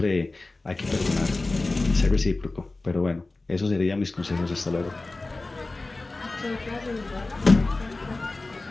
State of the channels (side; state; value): right; quieter; 3.2 dB